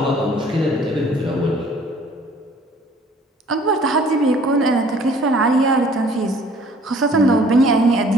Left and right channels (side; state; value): both; normal; correlation 0.55